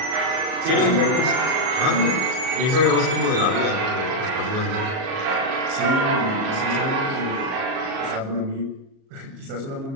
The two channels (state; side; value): late; left; 37 ms